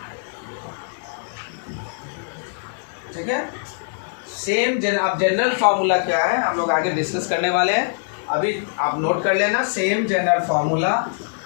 ठीक है। अब जनरल फार्मूला क्या है हम लोग आगे डिस्कस करने वाले हैं, अभी आप नोट कर लेना। Same general formula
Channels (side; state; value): right; silent; digital silence